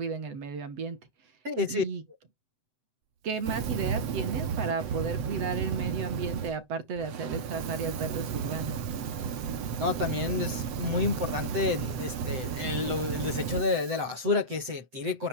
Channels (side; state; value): left; late; 7.9 ms